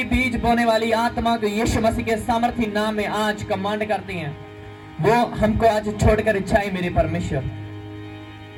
बीज बोने वाली आत्मा को यीशु मसीह के सामर्थी नाम में आज कमांड करते हैं, वो हमको आज छोड़कर जाए मेरे परमेश्वर।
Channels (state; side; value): identical; both; correlation 1.00